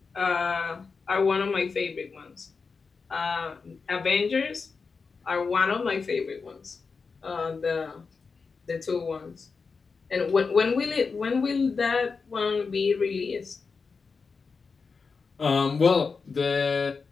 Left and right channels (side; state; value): right; quieter; 4.9 dB